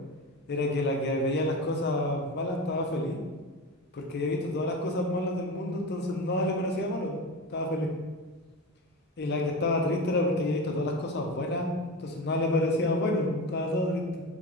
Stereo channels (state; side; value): normal; both; correlation 0.26